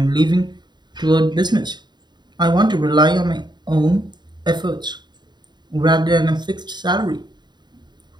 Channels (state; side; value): late; left; 0.21 ms